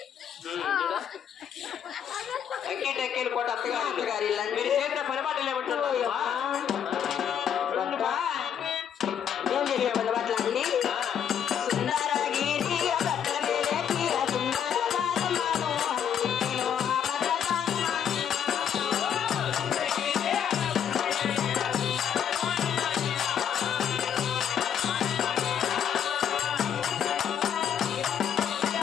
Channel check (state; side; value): quieter; right; 8.6 dB